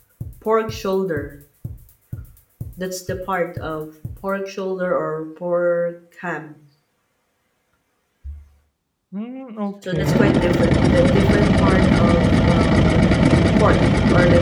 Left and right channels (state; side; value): identical; both; correlation 1.00